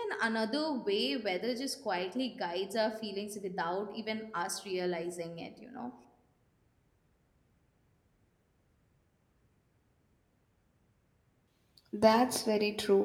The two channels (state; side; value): identical; both; correlation 1.00